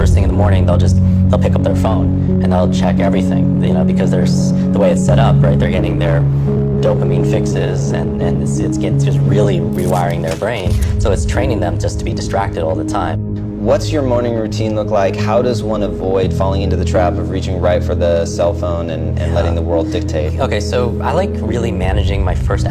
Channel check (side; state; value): both; identical; correlation 1.00